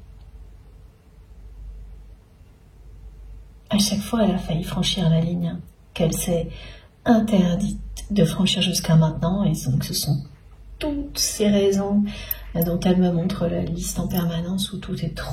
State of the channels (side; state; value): both; identical; correlation 1.00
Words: À chaque fois, elle a failli franchir la ligne qu'elle s'est interdite de franchir jusqu'à maintenant, et donc ce sont toutes ces raisons dont elle me montre la liste en permanence, où tout est